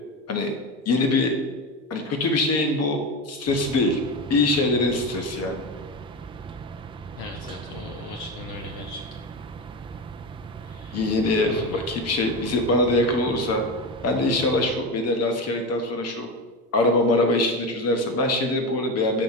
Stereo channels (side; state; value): both; normal; correlation 0.20